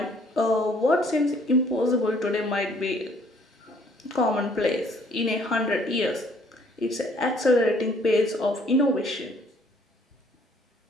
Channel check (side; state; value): both; normal; correlation 0.61